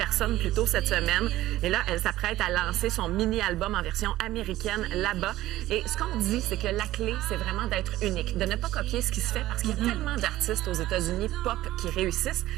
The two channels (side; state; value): left; quieter; 15.5 dB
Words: plus tôt cette semaine. Et là, elle s'apprête à lancer son mini-album en version américaine là-bas. Et ce qu'on dit, c'est que la clé, c'est vraiment d'être unique, de ne pas copier ce qui se fait, parce qu'il y a tellement d'artistes aux États-Unis pop qui réussissent